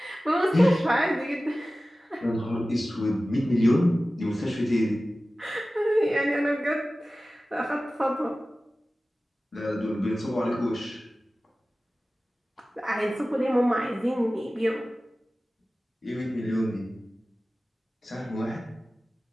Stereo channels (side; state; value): both; normal; correlation 0.96